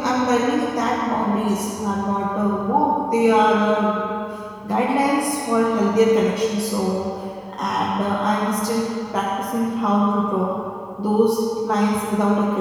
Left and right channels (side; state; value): both; identical; correlation 1.00